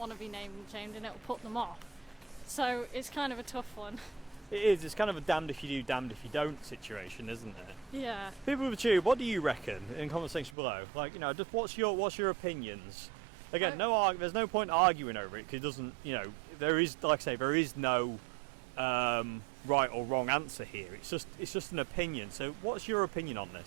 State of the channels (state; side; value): drops out; left; at 10.6 s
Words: to be named and shamed, and it'll put them off. So it's kind of a tough one. It is. It's kind of a damned if you do, damned if you don't situation, isn't it? Yeah. People with you, what do you reckon in comment section below? Like, you know, just what's your opinions? Again, there's no point arguing over it, because it doesn't, you know, there is, like I say, there is no right or wrong answer here. It's just an opinion. So, what's your opinion on